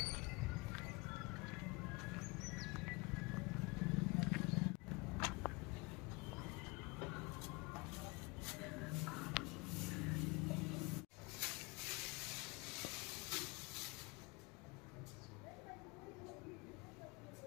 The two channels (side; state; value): right; quieter; 26.6 dB